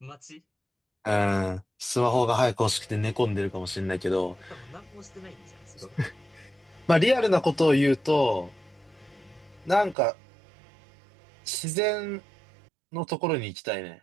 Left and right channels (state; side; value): drops out; left; at 10.0 s